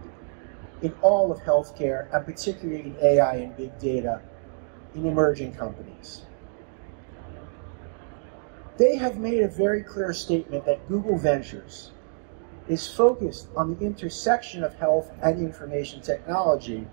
in all of healthcare, and particularly in AI and big data in emerging companies. They have made a very clear statement that Google Ventures is focused on the intersection of health and information technology.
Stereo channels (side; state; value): left; silent; digital silence